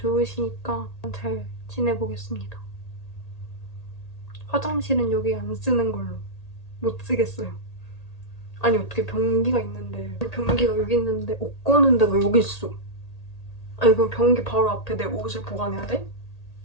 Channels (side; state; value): right; late; 1.8 ms